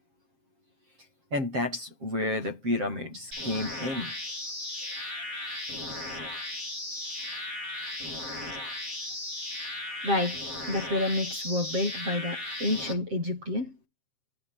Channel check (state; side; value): late; left; 7.5 ms